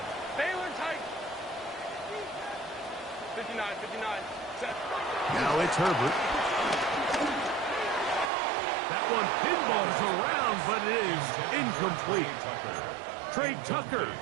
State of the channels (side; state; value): left; drops out; at 8.3 s